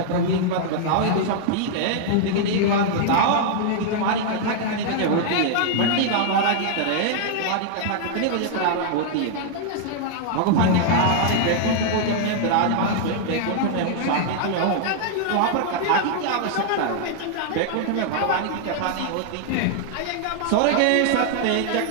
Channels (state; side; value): different; both; correlation -0.01